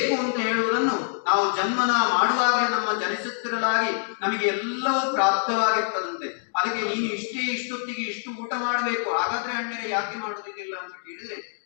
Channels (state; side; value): silent; right; digital silence